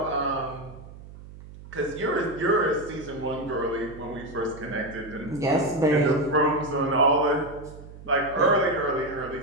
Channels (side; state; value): right; noise; hum, 17 dB below the sound